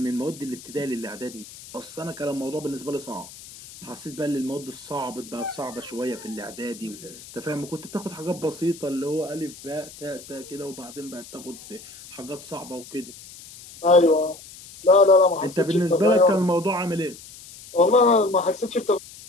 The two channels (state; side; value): noise; left; hiss, 17 dB below the sound